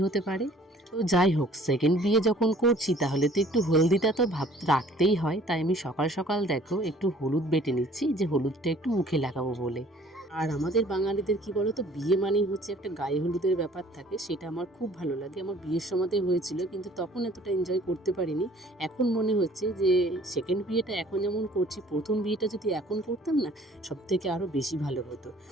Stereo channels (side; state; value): both; normal; correlation 0.54